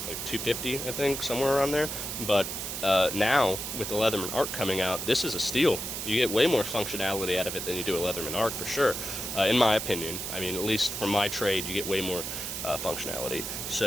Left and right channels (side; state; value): right; noise; hiss, 5 dB below the sound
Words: like $250, I think, somewhere around there. But now, with the Leatherman Arc coming out, this is a steal. You get way more functionality out of it than you do a Leatherman Arc, for sure, in my opinion. I mean, at least for my trade, you get way more functionality.